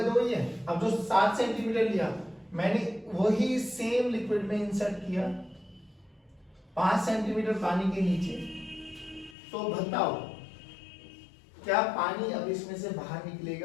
तो वही है। अब जो 7 सेंटीमीटर लिया मैंने वही सेम लिक्विड में इंसर्ट किया 5 सेंटीमीटर पानी के नीचे। तो बताओ क्या पानी अब इसमें से बाहर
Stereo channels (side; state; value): right; drops out; at 9.3 s